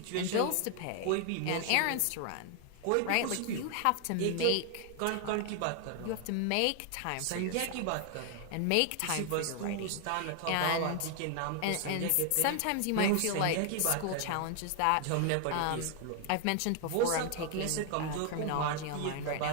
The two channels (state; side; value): different; both; correlation 0.00